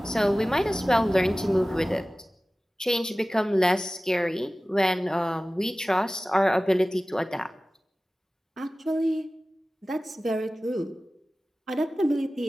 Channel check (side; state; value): both; normal; correlation 0.97